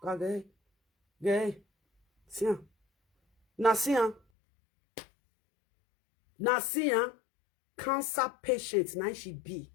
wagaye, see, Nasia. Nasia, cancer patient, now she be.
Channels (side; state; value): right; drops out; at 4.2 s